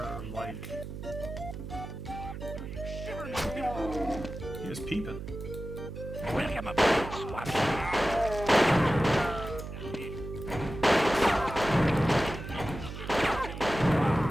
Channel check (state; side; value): noise; right; hum, 9 dB below the sound